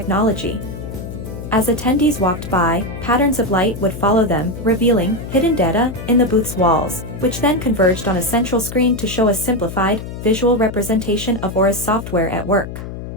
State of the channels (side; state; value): left; noise; hum, 9 dB below the sound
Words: As attendees walked by, patterns of light would follow them, revealing hidden data in the booth's walls, which then converged on a central screen to show a simplified, visual representation of Aura's software at work.